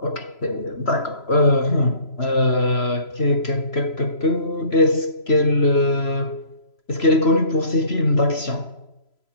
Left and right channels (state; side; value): late; right; 3.0 ms